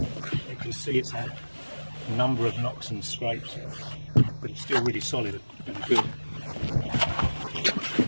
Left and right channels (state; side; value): inverted; both; correlation -1.00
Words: You can see it's had a number of knocks and scrapes, but it's still really solid and good.